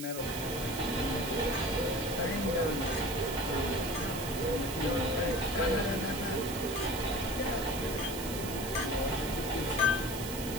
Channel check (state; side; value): noise; right; hiss, 9 dB below the sound